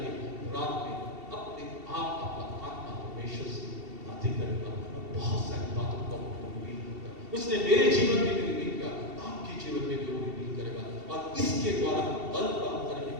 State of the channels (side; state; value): left; late; 2.7 ms